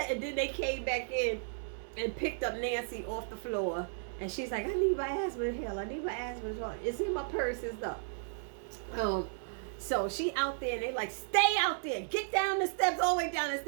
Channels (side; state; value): left; silent; digital silence